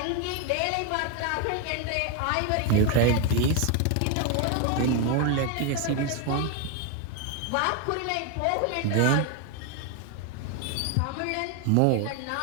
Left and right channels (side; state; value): both; different; correlation 0.01